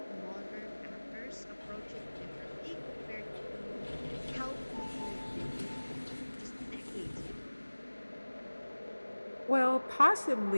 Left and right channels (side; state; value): both; inverted; correlation -1.00